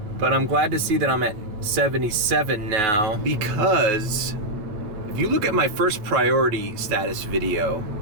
but I'm glad to see that I'm at $1.77 now, because if you look at my first priority status video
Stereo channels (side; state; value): left; late; 9.4 ms